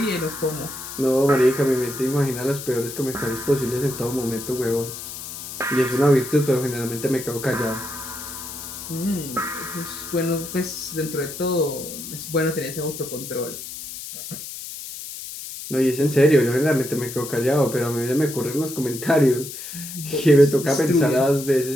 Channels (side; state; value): left; noise; hiss, 10 dB below the sound